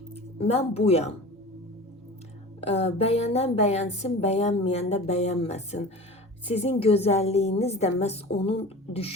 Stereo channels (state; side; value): normal; both; correlation 0.37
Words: Ben buyam. Bəyənən bəyənsin, bəyənməyən də bəyənməsin. Sizin gözəlliyiniz də məhz onun